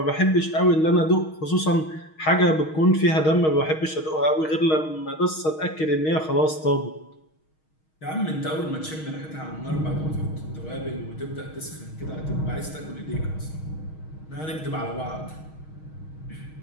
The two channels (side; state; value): right; late; 6.4 ms